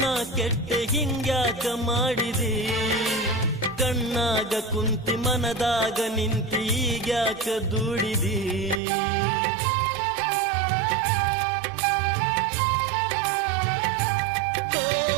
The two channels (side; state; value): left; drops out; at 8.8 s